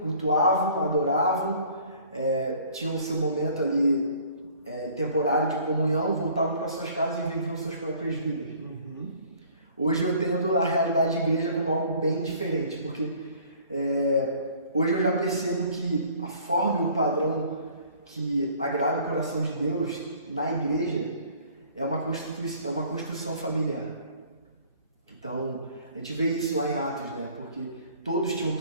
cultuavam, adoravam, tinham o seu momento ali temporário de comunhão, voltavam para suas casas e viviam suas próprias vidas. Uhum. Hoje eu tendo a realidade de igreja como algo bem diferente, porque hoje eu já percebo que a forma e o padrão que agrada o coração de Deus na igreja é uma construção familiar. Então, a gente vê isso lá em Atos, né? Porque todos tinham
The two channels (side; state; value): both; inverted; correlation -0.54